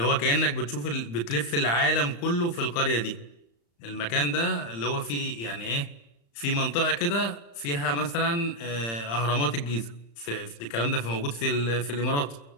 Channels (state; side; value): late; right; 35 ms